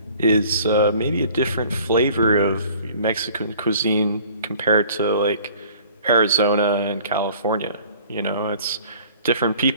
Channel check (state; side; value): inverted; both; correlation -0.51